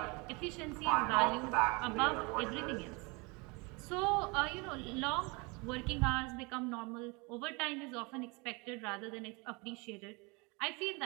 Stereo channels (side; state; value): left; quieter; 28.3 dB